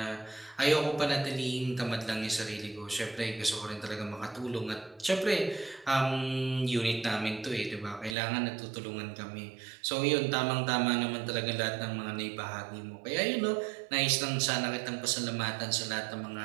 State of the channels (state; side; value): drops out; left; at 8.2 s